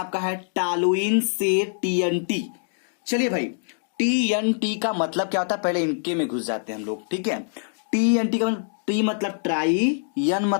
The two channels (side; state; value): right; silent; digital silence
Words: है टालुइन से TNT। चलिए भाई, TNT का मतलब क्या होता है, पहले इनके में घुस जाते हैं हम लोग, ठीक है। TNT का मतलब, T मतलब ट्राई, N